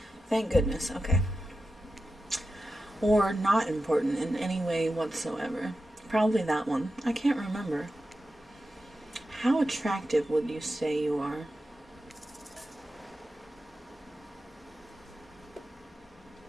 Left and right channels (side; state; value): both; normal; correlation 0.91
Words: Thank goodness. Okay. Or not important in any way whatsoever. Probably that one. I can't remember. How attractive would you say you are?